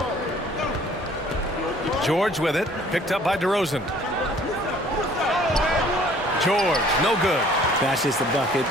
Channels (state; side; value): normal; both; correlation 0.55